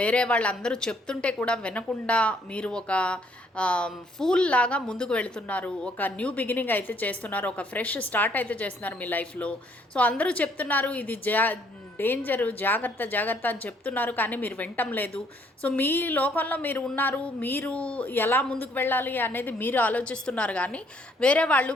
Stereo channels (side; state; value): both; normal; correlation 0.66